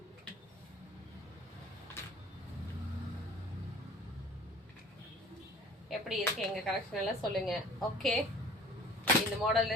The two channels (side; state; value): both; normal; correlation 0.47